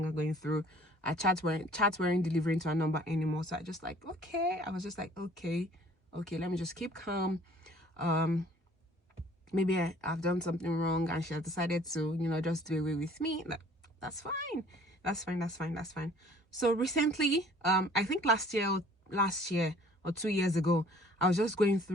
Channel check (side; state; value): both; normal; correlation 0.54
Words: going through. Our chats weren't delivering to her number anymore. So I was just like, okay, let me just keep calm. Maybe I've done something wrong and she has decided to, you know, just do away with me. That's fine. So recently, I think last year or 2 years ago, I was just going